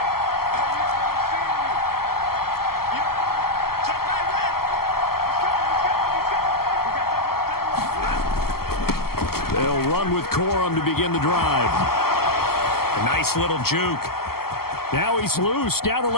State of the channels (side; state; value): right; late; 0.95 ms